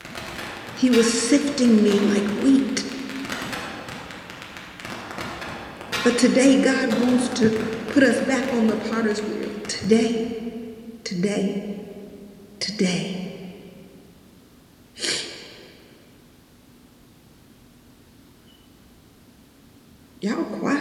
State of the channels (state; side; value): identical; both; correlation 1.00